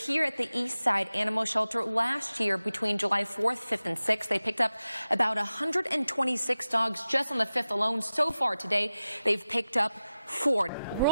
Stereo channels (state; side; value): inverted; both; correlation -0.95